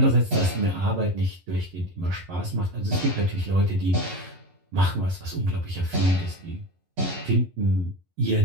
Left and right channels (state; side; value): late; left; 11 ms